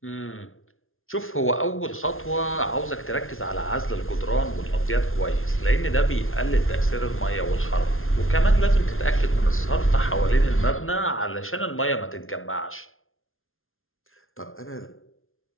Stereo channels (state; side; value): late; right; 0.61 ms